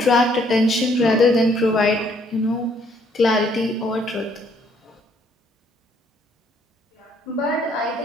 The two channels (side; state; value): both; normal; correlation 0.66